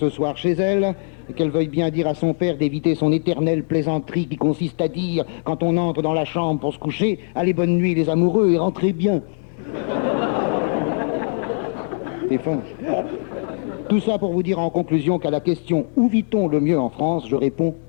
soir chez elle et qu'elle veuille bien dire à son père d'éviter son éternelle plaisanterie qui consiste à dire, quand on entre dans la chambre pour se coucher, « Allez, bonne nuit les amoureux et rentrez bien ». C'est fin. Tout ça pour vous dire en conclusion qu'à la question « Où vit-on le mieux en France ?», je réponds «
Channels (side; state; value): right; silent; digital silence